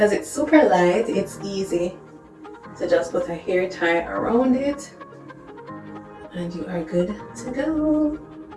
it's super light, it's easy to just put a hair tie around it and you are good to go.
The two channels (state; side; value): identical; both; correlation 1.00